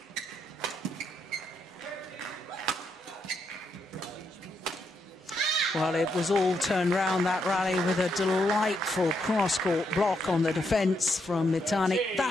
Well, it was all turned round, that rally, with a delightful cross-court block on the defence from Mitani.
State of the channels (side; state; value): both; normal; correlation 0.79